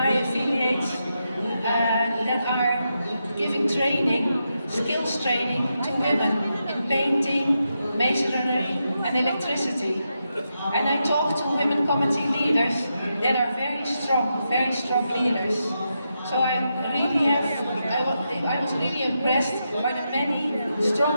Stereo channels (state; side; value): inverted; both; correlation -0.85